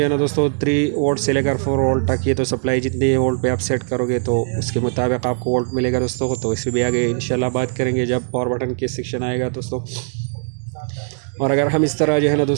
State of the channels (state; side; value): silent; left; 66 dB below the other